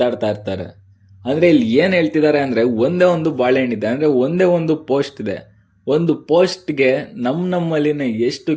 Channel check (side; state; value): both; identical; correlation 1.00